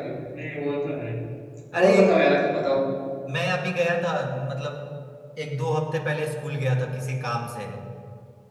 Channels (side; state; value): both; identical; correlation 1.00